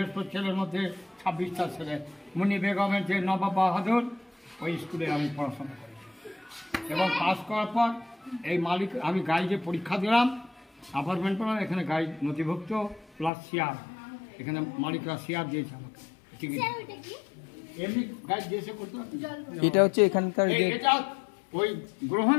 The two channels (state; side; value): drops out; right; at 13.3 s